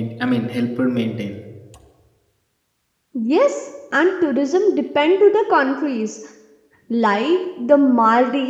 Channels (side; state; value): both; identical; correlation 1.00